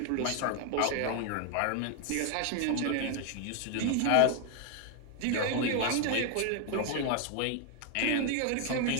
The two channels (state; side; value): different; both; correlation 0.00